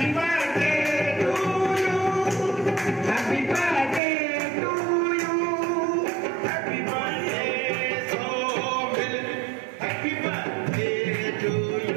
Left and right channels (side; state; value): left; drops out; at 4.0 s